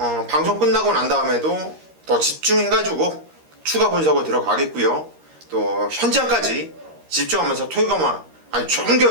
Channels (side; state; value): left; late; 13 ms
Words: 방송 끝나고 난 다음에도 더 집중해가지고 추가 분석을 들어가겠고요. 또 현장까지 집중하면서 토요 경마 아주 좋은